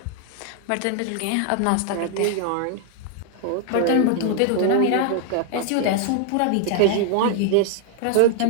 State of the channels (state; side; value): different; both; correlation 0.00